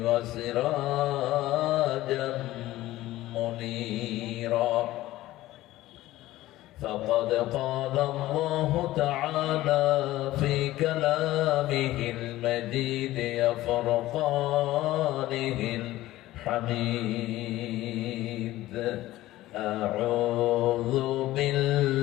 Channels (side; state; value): right; quieter; 16.2 dB